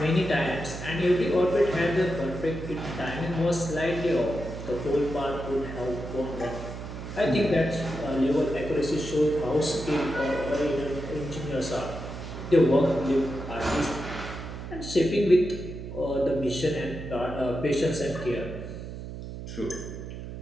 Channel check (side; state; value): right; noise; hum, 9 dB below the sound